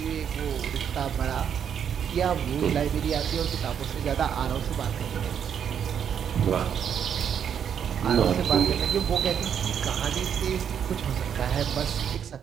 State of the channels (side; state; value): left; quieter; 8.3 dB